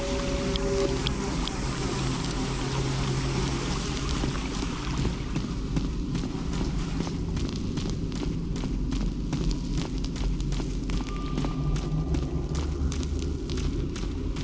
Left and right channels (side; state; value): both; identical; correlation 1.00